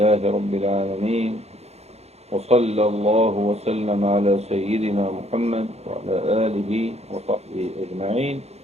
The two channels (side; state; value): left; late; 0.31 ms